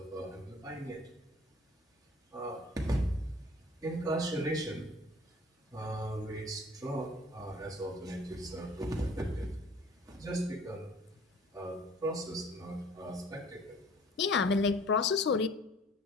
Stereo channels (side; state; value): both; normal; correlation 0.50